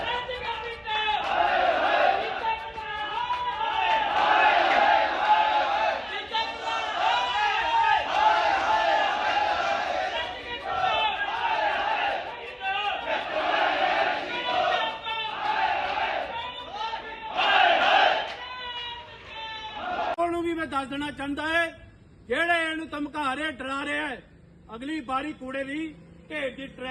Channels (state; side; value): identical; both; correlation 1.00